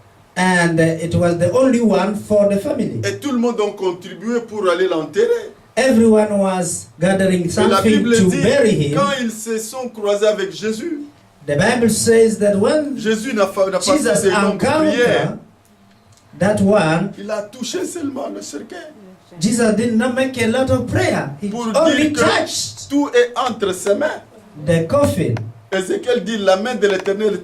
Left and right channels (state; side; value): identical; both; correlation 1.00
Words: and it was the only one for the family. Et tout le monde a contribué pour aller l'enterrer. Everyone was gathering Et la something Bible to dit, bury him. quand ils se sont croisés avec Jésus, The Bible says that when Jésus n'a pas fait Jesus de longues prières. encountered that one, Il a touché seulement le cercueil. Jesus did not make a lot of prayer. He Pour only dire touched que tout est entre ses mains. the coffin Ézéchiel dit, la main de l'Éternel